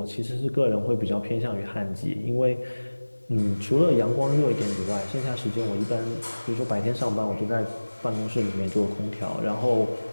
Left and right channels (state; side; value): inverted; both; correlation -1.00